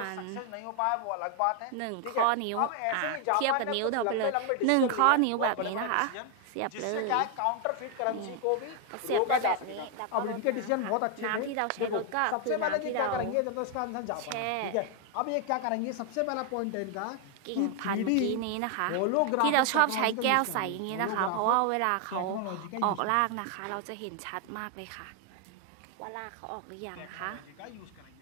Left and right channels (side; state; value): both; different; correlation 0.00